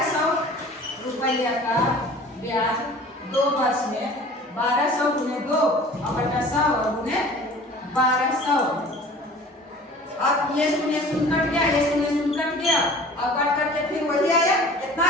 रुपया का ब्याज 2 वर्ष में 1200 गुने 2 और बटा 100 और गुने 1200। अब ये शून्य शून्य कट गया, ये शून्य शून्य कट गया और कट करके फिर वही आया। कितना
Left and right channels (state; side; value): normal; both; correlation 0.45